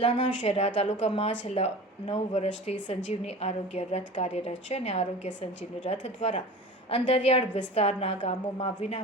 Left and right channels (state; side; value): normal; both; correlation 0.36